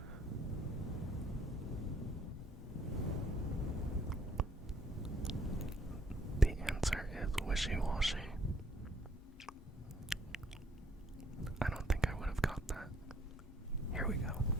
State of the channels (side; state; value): both; normal; correlation 0.64